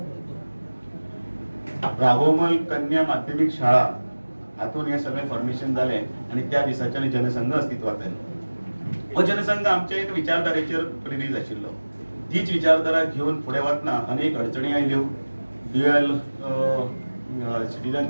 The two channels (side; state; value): both; inverted; correlation -1.00